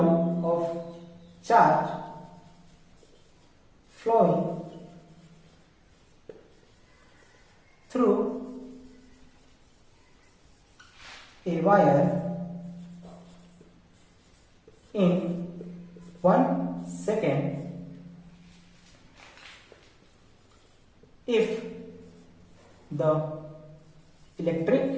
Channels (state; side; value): identical; both; correlation 1.00